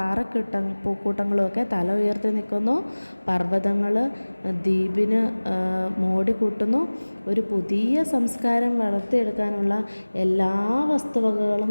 പൂക്കൂട്ടങ്ങളും ഒക്കെ തല ഉയർത്തി നിൽക്കുന്നു. പർവ്വതങ്ങൾ ദ്വീപിന് മോടി കൂട്ടുന്നു. ഒരു പുതിയ സംസ്കാരം വളർത്തിയെടുക്കാനുള്ള എല്ലാ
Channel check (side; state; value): both; inverted; correlation -1.00